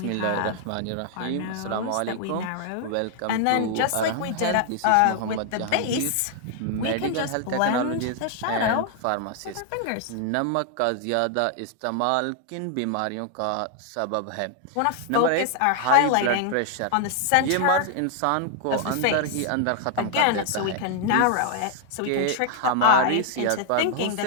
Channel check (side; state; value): both; different; correlation 0.00